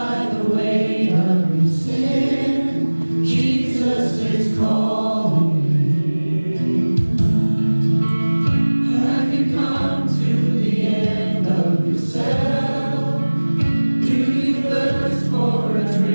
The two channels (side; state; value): both; inverted; correlation -1.00